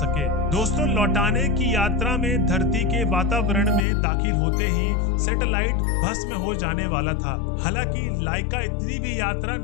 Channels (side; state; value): right; drops out; at 3.9 s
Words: दोस्तों लौटाने की यात्रा में धरती के वातावरण में दाखिल होते ही सैटेलाइट भस्म हो जाने वाला था। हालांकि लाइका इतनी भी यात्रा